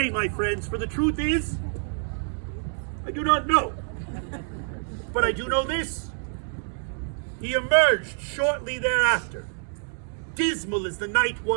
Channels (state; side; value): silent; left; 59 dB below the other